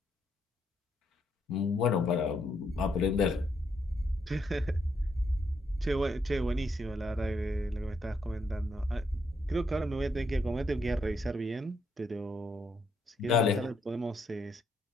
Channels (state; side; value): normal; both; correlation 0.77